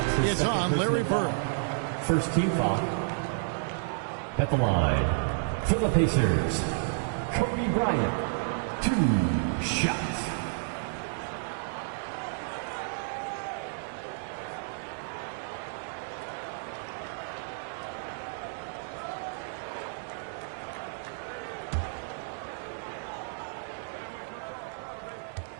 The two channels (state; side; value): silent; left; digital silence